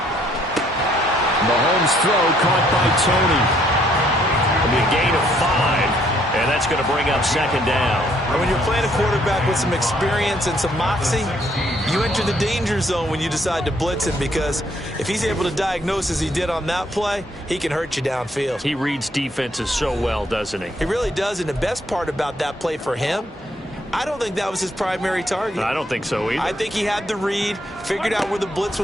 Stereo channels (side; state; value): both; normal; correlation 0.68